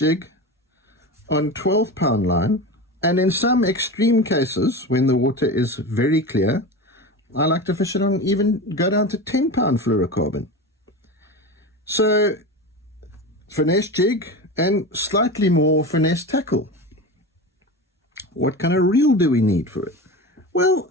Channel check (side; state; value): both; normal; correlation 0.26